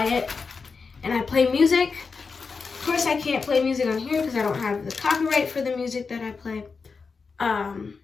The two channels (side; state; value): right; quieter; 4.9 dB